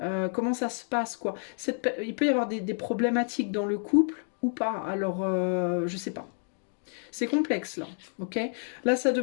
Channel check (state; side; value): silent; right; 55 dB below the other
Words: comment ça se passe quoi? Il peut y avoir des problématiques dans le couple ou pas, alors je sais pas. C'est complexe là, ok? Là, ça